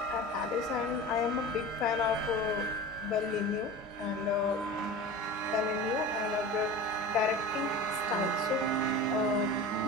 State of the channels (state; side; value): normal; both; correlation 0.33